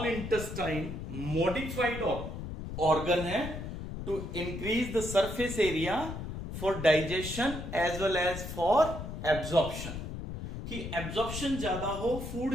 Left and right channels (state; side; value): noise; left; rumble, 7 dB below the sound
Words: intestine modified organ है to increase the surface area for digestion as well as for absorption, कि एब्जॉर्प्शन ज्यादा हो,